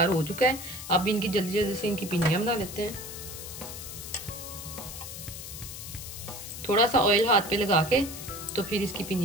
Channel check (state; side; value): noise; left; hiss, 10 dB below the sound